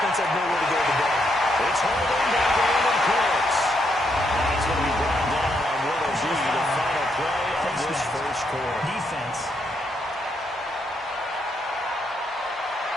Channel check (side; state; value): both; normal; correlation 0.77